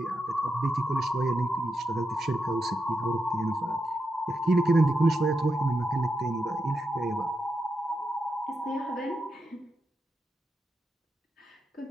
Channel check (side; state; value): both; normal; correlation 0.85